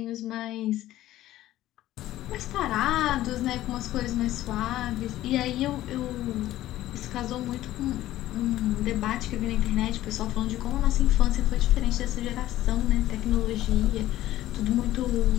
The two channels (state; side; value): quieter; right; 14.5 dB